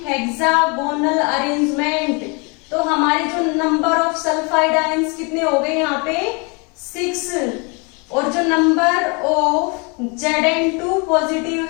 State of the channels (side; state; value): right; quieter; 31.9 dB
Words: hexagonal arrangement. तो हमारे जो नंबर ऑफ सल्फाइड आयंस कितने हो गए यहाँ पे? 6। और जो नंबर ऑफ Zn2 पॉजिटिव